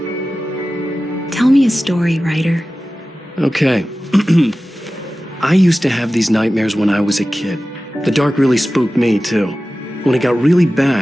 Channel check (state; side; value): normal; both; correlation 0.95